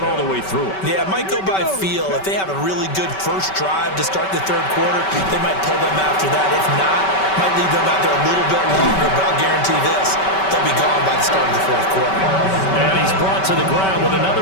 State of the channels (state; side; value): late; right; 5.2 ms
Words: all the way through it. Yeah, it might go by feel. If they have a really good first drive to start the 3rd quarter, they might pull them after that. If not, might leave them out there a little bit longer, but I'll guarantee this, they'll be gone by the start of the 4th quarter. And he's brought to the ground with